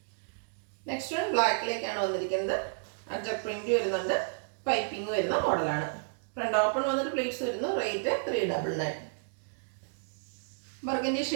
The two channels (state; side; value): silent; left; digital silence